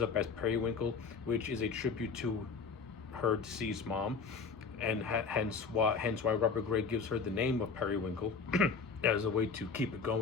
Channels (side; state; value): right; quieter; 5.2 dB